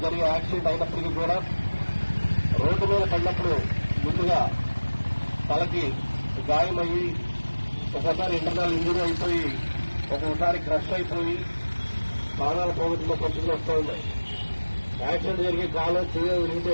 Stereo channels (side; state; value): both; inverted; correlation -1.00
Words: జరిగే యాక్సిడెంట్ అయినప్పటికీ కూడా రోడ్డు మీద పడినప్పుడు ముందుగా తలకి గాయమయ్యి ఒకసారి ఇంటర్నల్ ఇంజరీ అయిపోయి ఒక్కొక్కసారి క్రష్ అయిపోయి ప్రాణాలు పోగొట్టుకున్న పరిస్థితులు వస్తూ ఉన్నాయి. యాక్సిడెంట్ జరిగే కాలం విరిగితే